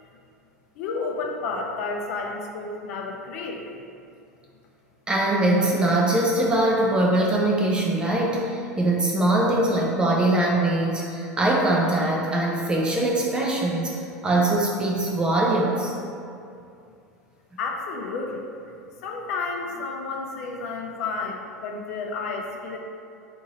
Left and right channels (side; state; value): both; normal; correlation 0.41